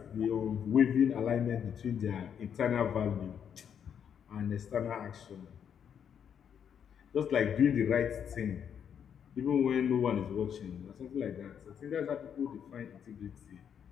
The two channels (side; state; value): right; quieter; 8.2 dB